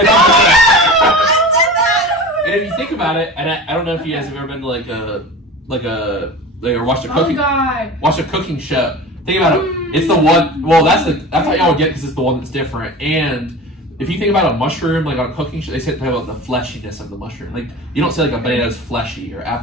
And if you think about it, and I don't know if you guys have ever been to or watched a Oh god. cooking show. Think about it. It's the one. Well, that's how y'all would get, because it's the one that's different. And if you think about a mushroom, like on a cooking show, they say about the fleshiness of the mushroom. Like you don't say like a banana's fleshy or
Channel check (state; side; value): normal; both; correlation 0.34